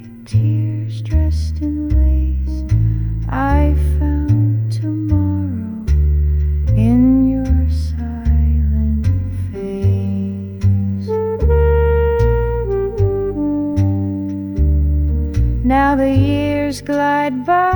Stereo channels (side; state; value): both; identical; correlation 1.00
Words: tears dressed in lace. I found tomorrow in your silent face. Now the years glide by